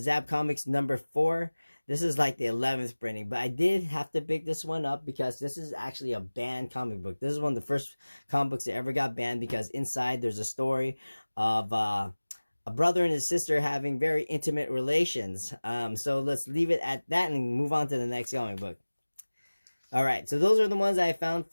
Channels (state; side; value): inverted; both; correlation -1.00